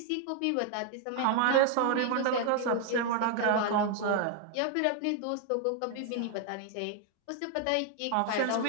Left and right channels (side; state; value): both; different; correlation 0.00